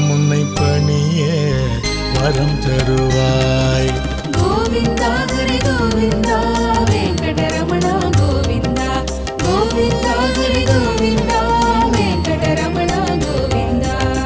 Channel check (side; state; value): both; identical; correlation 1.00